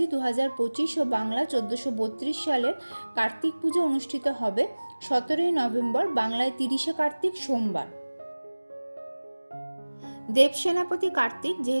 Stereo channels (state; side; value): inverted; both; correlation -1.00